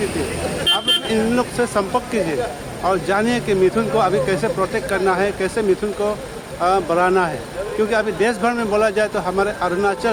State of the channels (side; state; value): both; identical; correlation 1.00